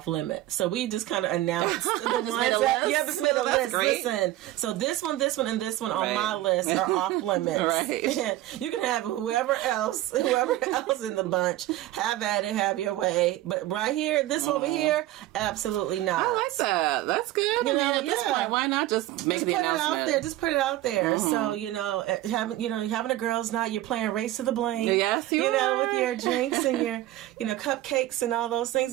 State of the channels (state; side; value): quieter; left; 15.4 dB